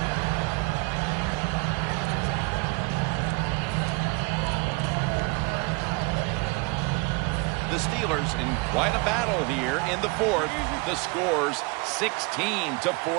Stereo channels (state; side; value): quieter; left; 29.2 dB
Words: The Steelers in quite a battle here in the 4th. The score's 16-14.